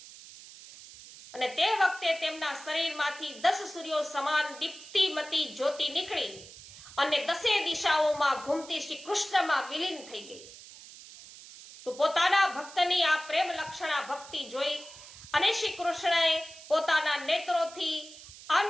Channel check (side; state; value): right; noise; hiss, 17 dB below the sound